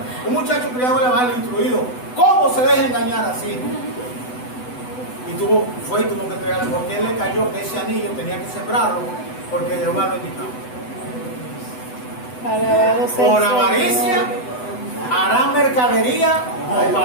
un muchacho criado en el evangelio, instruido, ¿cómo se deja engañar así? Y tuvo que entregarle, porque él le cayó que ese anillo tenía que sembrarlo, porque Jehová lo indicaba. Por avaricia harán mercadería o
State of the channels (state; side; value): late; right; 8.0 ms